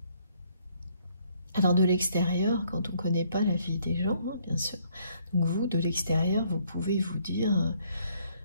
Alors de l'extérieur, quand on ne connaît pas la vie des gens, hein, bien sûr, donc vous, de l'extérieur, vous pouvez vous dire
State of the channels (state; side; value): inverted; both; correlation -0.66